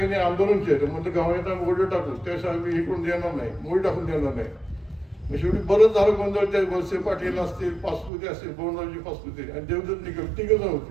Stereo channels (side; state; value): left; drops out; at 8.1 s